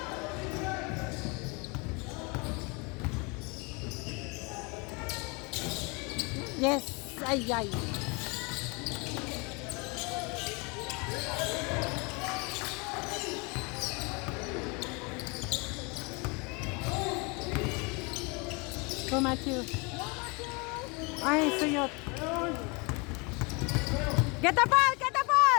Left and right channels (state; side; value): quieter; right; 29.7 dB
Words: Yes, ay, ay. Go, Matthew. Ay, suyot. Get the ball! Get the